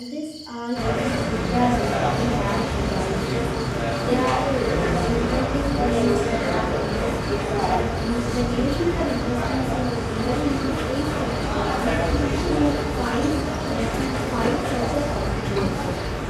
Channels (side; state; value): both; identical; correlation 1.00